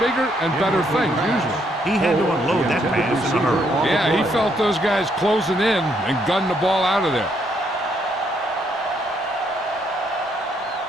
bigger and better things, usually. He had to unload that pass in a hurry. Yeah, he felt those guys closing in and gunned the ball out of there.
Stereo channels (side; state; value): both; normal; correlation 0.72